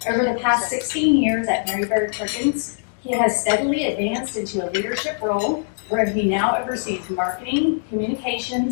Over the past 16 years at Mary Bird Perkins, he has steadily advanced into a leadership role where he now oversees marketing,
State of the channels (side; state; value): right; silent; digital silence